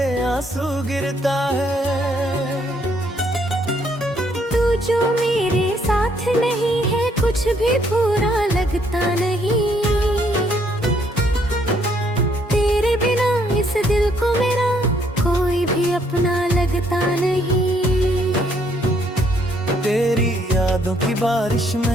आंसू गिरता है। तू जो मेरे साथ नहीं है कुछ भी पूरा लगता नहीं। तेरे बिना इस दिल को मेरा कोई भी अपना लगता नहीं। तेरी यादों की बारिश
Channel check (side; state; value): both; normal; correlation 0.69